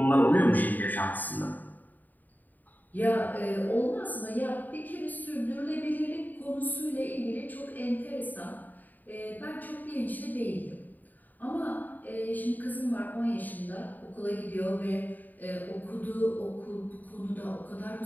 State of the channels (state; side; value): late; right; 0.085 ms